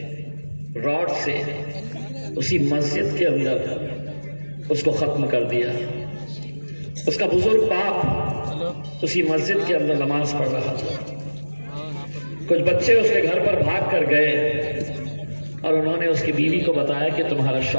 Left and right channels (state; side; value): inverted; both; correlation -1.00